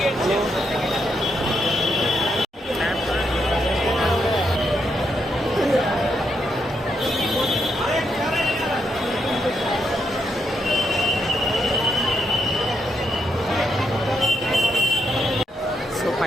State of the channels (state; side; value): normal; both; correlation 0.80